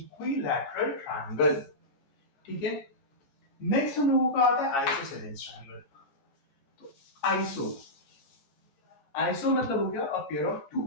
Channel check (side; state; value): right; late; 14 ms